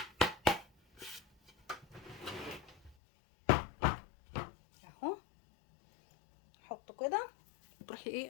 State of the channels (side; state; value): right; drops out; at 3.0 s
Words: اهو، حطه كده تروحي